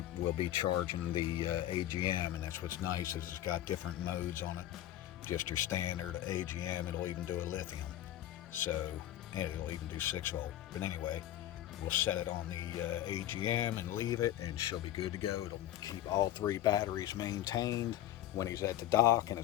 will be charging the AGM, and that's what's nice, is it's got different modes on it. Just your standard AGM, it'll even do a lithium. So, and it'll even do 6 volt. But anyway, We'll set it on the AGM and leave it, and she'll be good to go. It'll keep all 3 batteries maintained when he's at the dock and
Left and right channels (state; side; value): quieter; right; 12.9 dB